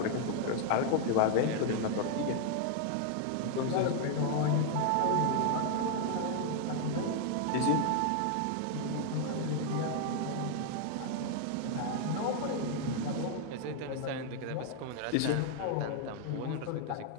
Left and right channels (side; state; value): both; different; correlation 0.00